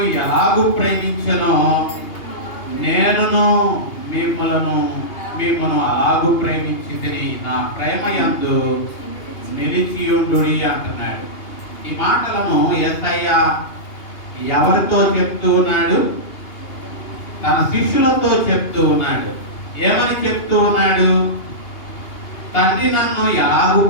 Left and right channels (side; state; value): right; late; 2.8 ms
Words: ఎలాగూ ప్రేమించెనో నేనును మిమ్మును అలాగూ ప్రేమించితిని, నా ప్రేమ యందు నిలిచియుండుడి అంటున్నాడు. ఈ మాటలను యేసయ్య ఎవరితో చెప్తూ ఉన్నాడు? తన శిష్యులతో చెప్తూ ఉన్నాడు. ఏమని చెప్తూ ఉన్నాడు? తండ్రి నన్ను ఎలాగూ